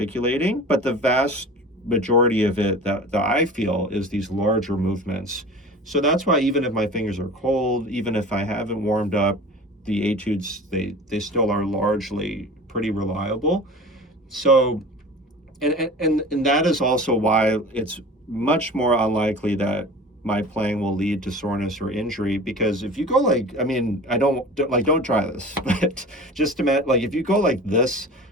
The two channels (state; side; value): normal; both; correlation 0.38